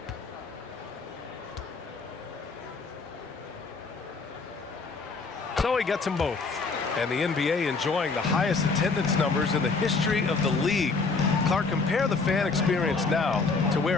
So he gets them both. And the NBA enjoying the highest attendance numbers in the history of the league. Clark, compare the fan experience now to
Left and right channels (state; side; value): quieter; right; 4.2 dB